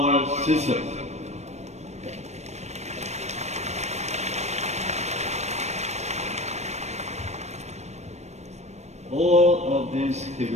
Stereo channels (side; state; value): left; late; 0.32 ms